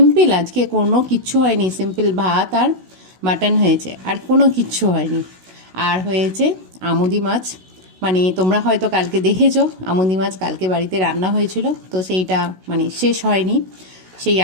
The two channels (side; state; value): left; late; 16 ms